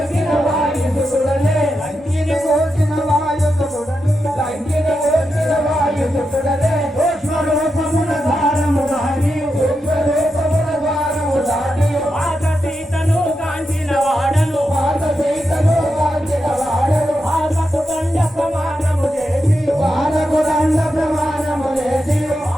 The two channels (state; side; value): normal; both; correlation 0.87